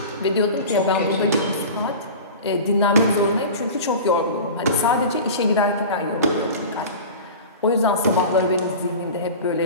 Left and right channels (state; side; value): inverted; both; correlation -0.34